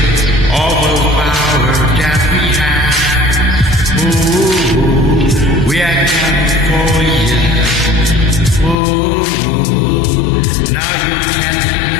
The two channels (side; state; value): right; drops out; at 8.8 s